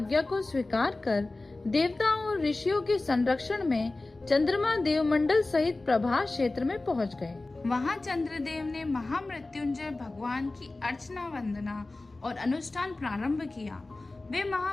को स्वीकार कर देवताओं और ऋषियों के संरक्षण में चंद्रमा देवमंडल सहित प्रभास क्षेत्र में पहुंच गए। वहाँ चंद्रदेव ने महामृत्युंजय भगवान की अर्चना वंदना और अनुष्ठान प्रारंभ किया। वे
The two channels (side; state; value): right; quieter; 3.1 dB